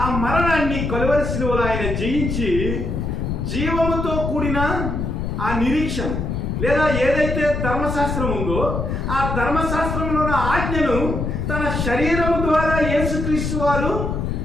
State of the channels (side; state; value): left; noise; rumble, 2 dB below the sound